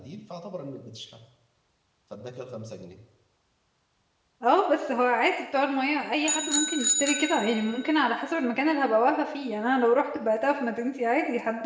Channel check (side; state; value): both; identical; correlation 1.00